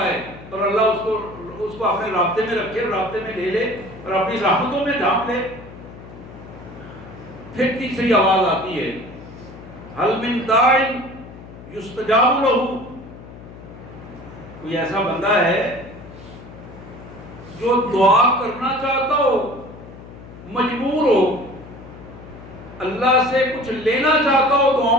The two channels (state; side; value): noise; left; hum, 17 dB below the sound